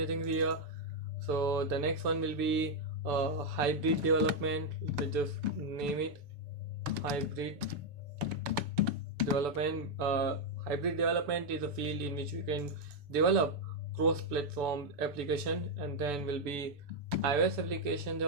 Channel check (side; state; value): left; late; 6.9 ms